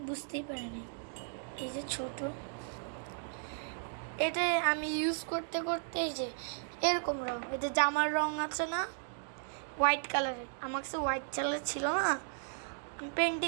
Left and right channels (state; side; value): silent; left; digital silence